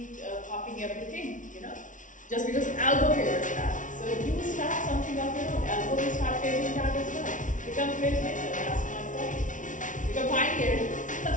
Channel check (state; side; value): late; right; 0.37 ms